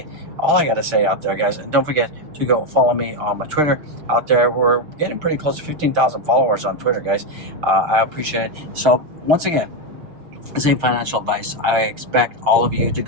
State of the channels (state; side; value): late; left; 6.6 ms